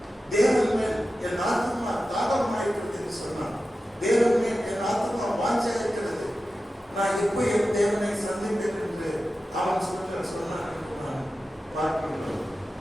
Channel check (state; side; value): normal; both; correlation 0.93